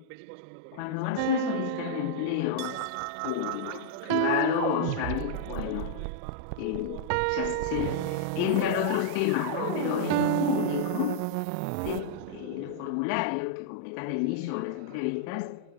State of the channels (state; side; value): different; both; correlation -0.02